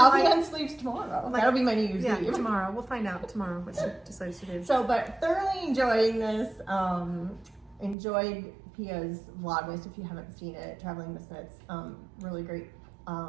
be on sleeves tomorrow. That'll be my New Year's Yeah, Eve. tomorrow. We'll find out tomorrow what she decides to do. So, but thoroughly enjoying this. Enjoyed Pia's Vlogmas. If you haven't seen it, Traveling Miss Knits, really great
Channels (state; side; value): drops out; left; at 8.0 s